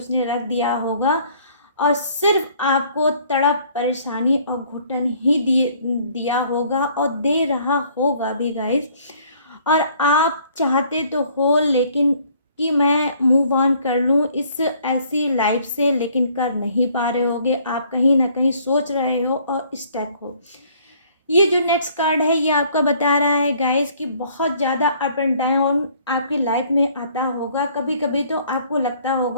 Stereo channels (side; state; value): both; inverted; correlation -0.60